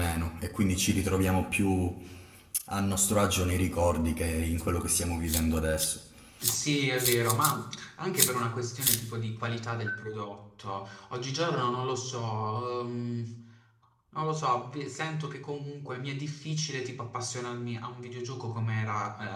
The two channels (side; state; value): both; identical; correlation 1.00